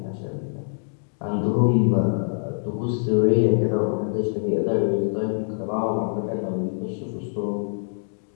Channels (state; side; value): silent; right; digital silence